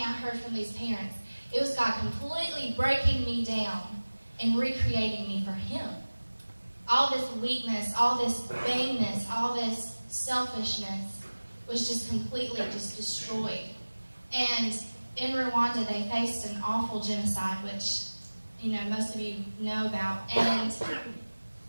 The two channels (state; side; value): inverted; both; correlation -1.00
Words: I heard from these parents, it was God completely breaking me down and recreating me for Him. All this weakness, all this vainness, all this selfishness was just completely destroyed. And in Rwanda, they faced an awful genocide, which, most of you know about. And